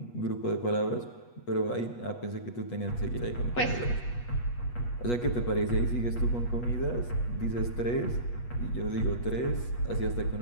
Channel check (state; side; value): late; right; 8.3 ms